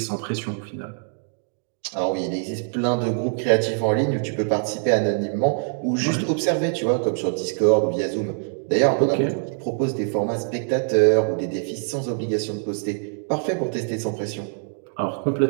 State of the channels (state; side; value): silent; left; 60 dB below the other